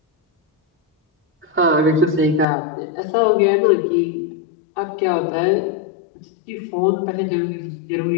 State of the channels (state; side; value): drops out; right; at 2.5 s